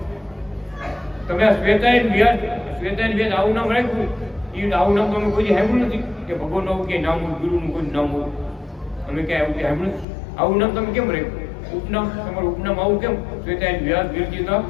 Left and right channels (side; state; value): right; drops out; at 10.1 s